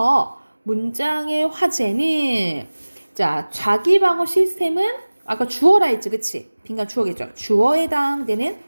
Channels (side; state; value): both; inverted; correlation -1.00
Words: 문장의 화제는 자, 자기 방어 시스템은 아까 주어라 했지. 그치? 빈칸 주어겠죠. 주어에 해당되는